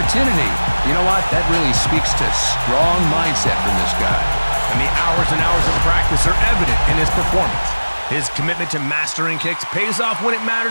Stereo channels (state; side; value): inverted; both; correlation -1.00